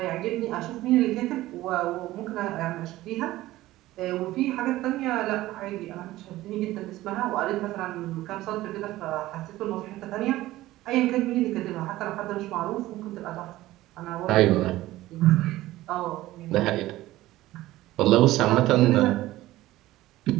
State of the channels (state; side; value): quieter; left; 16.5 dB